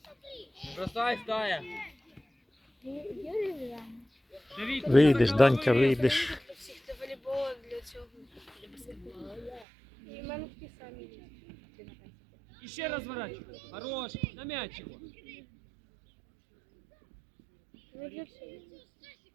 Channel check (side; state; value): left; drops out; at 9.7 s